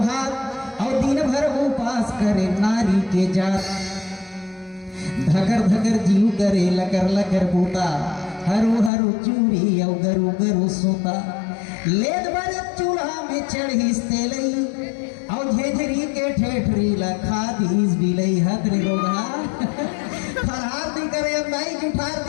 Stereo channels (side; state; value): right; drops out; at 8.9 s